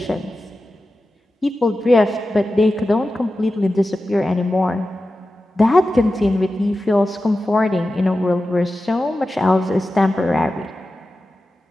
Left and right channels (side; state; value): both; normal; correlation 0.93